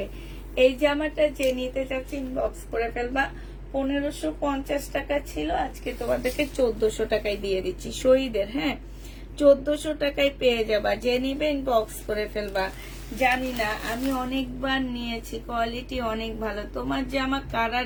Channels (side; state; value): both; identical; correlation 1.00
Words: এই জামাটা যে নিতে চাচ্ছি ইনবক্স করে ফেলবা। 1550 টাকা ছিল, আজকে তোমাদেরকে 1400 টাকায় দিয়ে দিচ্ছি শহীদের। হ্যাঁ, 1400 টাকায় পেয়ে যাবা, যে নিবে ইনবক্স করে ফেলবা। জানি না, আমি অনেকবার নিয়েছি, কোয়ালিটি অনেক ভালো। তোমার জামা কারা